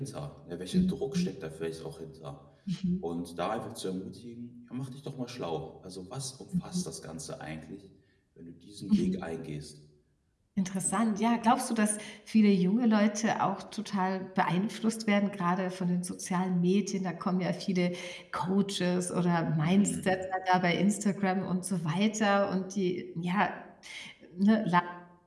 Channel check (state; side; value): identical; both; correlation 1.00